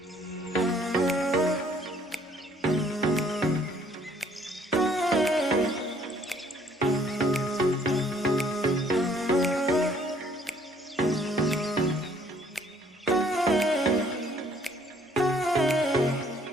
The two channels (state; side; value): normal; both; correlation 0.62